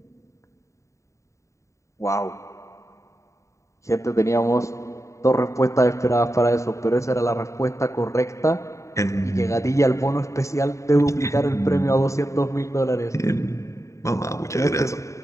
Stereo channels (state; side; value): late; right; 0.15 ms